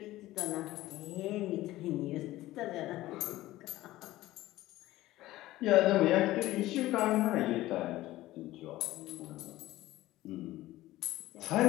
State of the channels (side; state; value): right; quieter; 16.5 dB